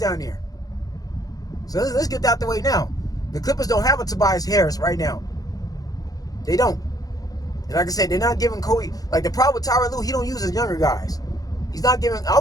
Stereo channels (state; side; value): late; right; 0.18 ms